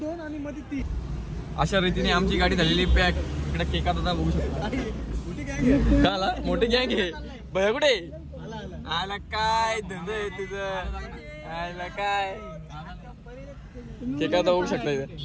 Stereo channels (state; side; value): identical; both; correlation 1.00